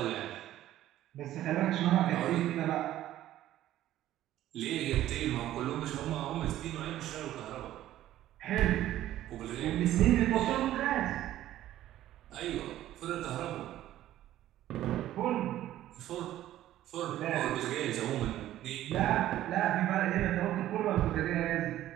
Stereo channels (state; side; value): quieter; left; 13.4 dB